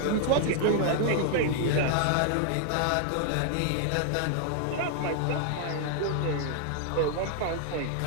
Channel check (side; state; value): both; different; correlation 0.00